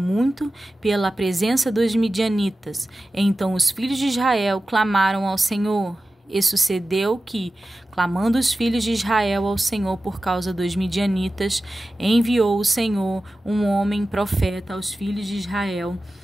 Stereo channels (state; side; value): normal; both; correlation 0.94